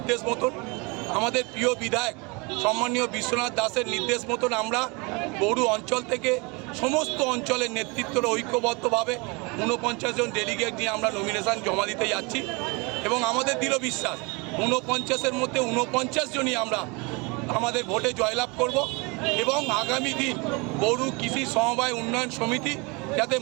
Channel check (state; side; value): quieter; left; 28.4 dB